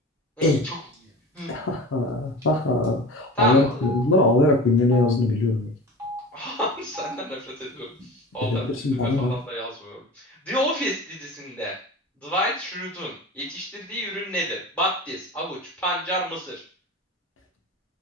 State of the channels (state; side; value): normal; both; correlation 0.35